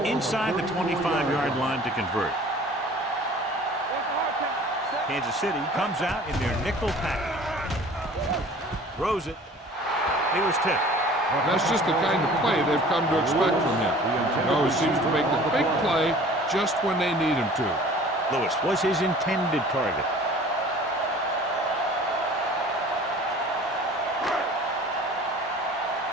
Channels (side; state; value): both; normal; correlation 0.47